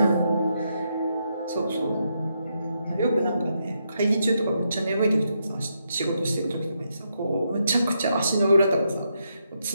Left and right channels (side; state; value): both; inverted; correlation -0.80